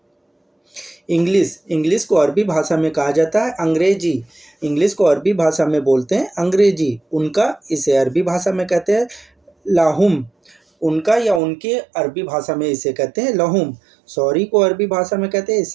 इंग्लिश, इंग्लिश को अरबी भाषा में कहा जाता है अंग्रेजी। इंग्लिश को अरबी भाषा में बोलते हैं अंग्रेजी। उनका, इसे अरबी भाषा में कहते हैं लाहुम। उनका या उनके अरबी भाषा में इसे कहते हैं लहुम। सॉरी को अरबी भाषा में कहते हैं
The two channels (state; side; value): drops out; left; at 11.4 s